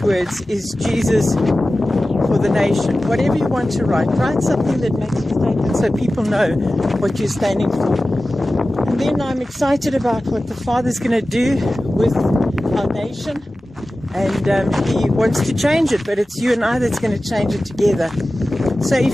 words is Jesus for the nation. Whatever you want to write something that makes a statement so people know what you're standing for. And then I'm excited about what the Father's going to do with our nation. And He wants to change it, but it's you and I that's going to change it together. So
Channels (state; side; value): normal; both; correlation 0.95